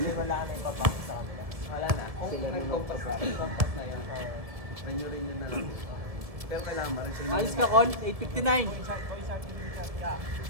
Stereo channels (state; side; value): late; left; 1.5 ms